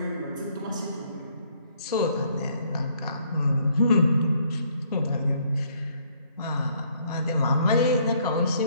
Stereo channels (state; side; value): inverted; both; correlation -0.66